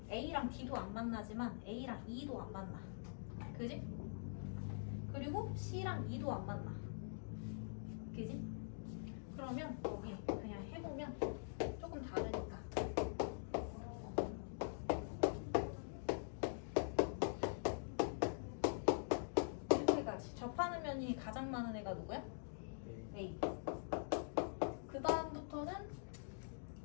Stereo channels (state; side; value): silent; right; digital silence